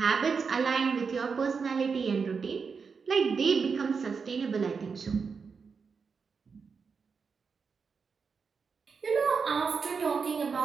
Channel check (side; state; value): left; quieter; 5.5 dB